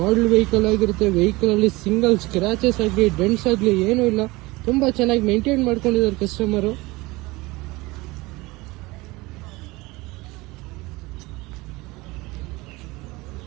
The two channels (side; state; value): left; quieter; 22.0 dB